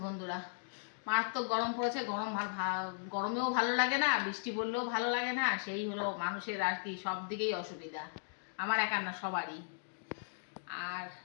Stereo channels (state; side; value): silent; right; digital silence